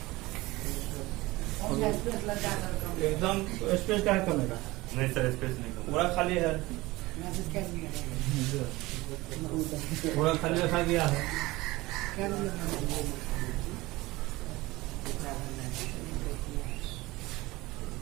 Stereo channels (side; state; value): left; quieter; 20.3 dB